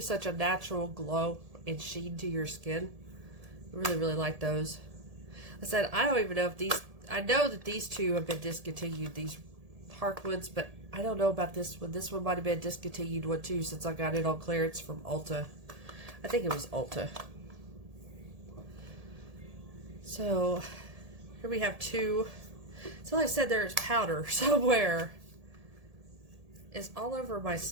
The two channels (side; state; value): left; late; 1.7 ms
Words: a natural glow and sheen to your skin. I really, really like those. I said, I don't even know if these, I know that these two have been discontinued, these Harkwoods, but I don't know about this one. This one might have been discontinued one too, since I got it on clearance from Ulta. I think it was Ulta. So, here we have two. So like I said, there's powder somewhere. It's all over my